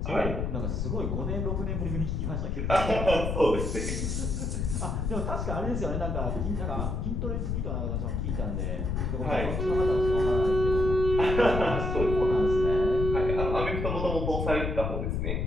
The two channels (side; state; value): left; noise; rumble, 1 dB below the sound